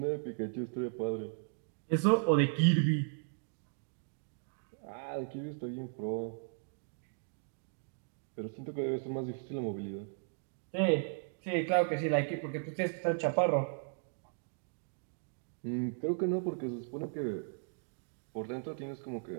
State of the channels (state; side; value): silent; left; digital silence